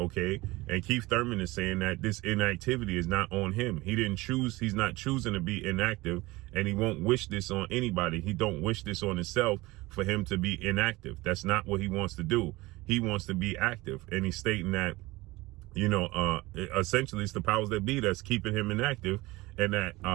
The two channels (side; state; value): left; quieter; 20.8 dB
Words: And Keith Thurman is saying that this inactivity is not on him. He didn't choose, he's not choosing to be inactive, and he won't wish this on anybody. He don't wish this on himself for him to be inactive. That's not what he wants to do. He wants to be active, and he's stating that, you know, essentially it's the powers that be that's keeping him inactive, and that